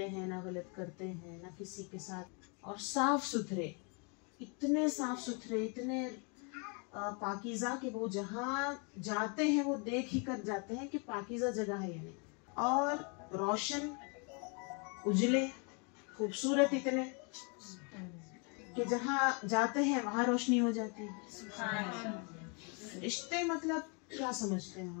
हैं ना, गलत करते हैं ना किसी के साथ, और साफ सुथरे, इतने साफ सुथरे, इतने पाकीज़ा कि वो जहाँ जाते हैं वो देख ही कर जाते हैं कि पाकीज़ा जगह है या नहीं, और रोशन, उजले, खूबसूरत इतने कि जहाँ जाते हैं वहां रोशनी हो जाती है। रिश्ते मतलब क्या समझते हैं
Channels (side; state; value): right; quieter; 35.1 dB